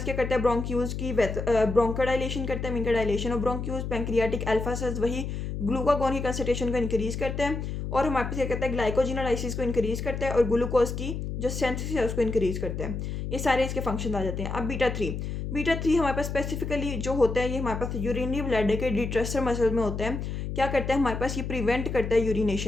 क्या करता है, ब्रोंक्यूल्स की ब्रोंकोडाइलेशन करता है, मीन का dilation of bronchioles. Pancreatic alpha cells वही ग्लूकागोन की कंसंट्रेशन को इंक्रीज करते हैं, और हमारे पास क्या करता है, ग्लाइकोजिनोलाइसिस को इंक्रीज करता है, और ग्लूकोज की जो सिंथेसिस है उसको इंक्रीज करते हैं। ये सारे इसके फंक्शन आ जाते हैं। अब बीटा 3 हमारे पास स्पेसिफिकली जो होता है, ये हमारे पास यूरिनरी ब्लैडर के डिट्रेसर मसल में होता है। क्या करता है, हमारे पास ये प्रिवेंट करता है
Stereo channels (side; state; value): left; noise; hum, 4 dB below the sound